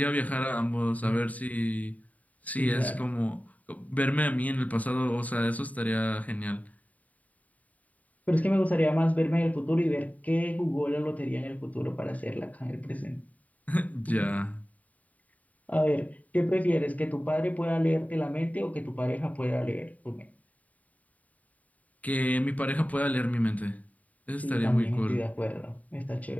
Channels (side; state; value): right; late; 0.071 ms